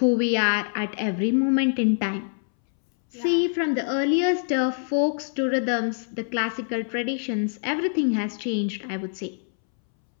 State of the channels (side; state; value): right; silent; 62 dB below the other